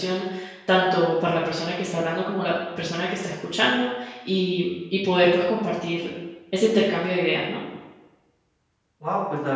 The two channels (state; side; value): identical; both; correlation 1.00